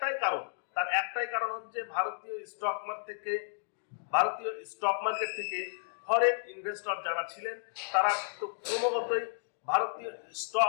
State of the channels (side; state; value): right; silent; digital silence